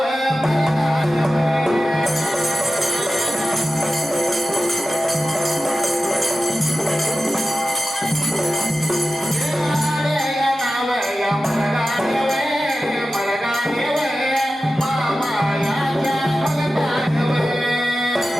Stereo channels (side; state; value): both; normal; correlation 0.93